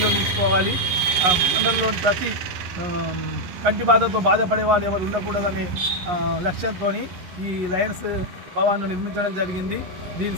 మండలంలోని ప్రతి కంటి బాధతో బాధపడేవారు ఎవరు ఉండకూడదనే లక్ష్యంతో ఈ లయన్స్ భవన్ను నిర్మించడం జరిగింది. దీని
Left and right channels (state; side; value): late; left; 11 ms